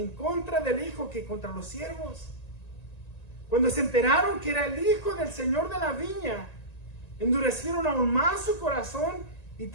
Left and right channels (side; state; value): right; late; 1.9 ms